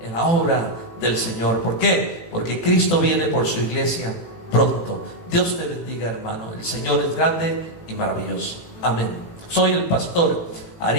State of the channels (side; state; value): right; late; 18 ms